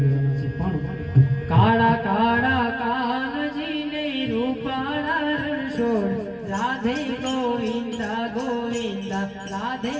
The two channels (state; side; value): identical; both; correlation 1.00